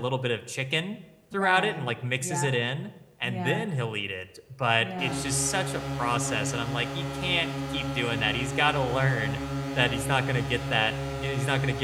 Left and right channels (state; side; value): identical; both; correlation 1.00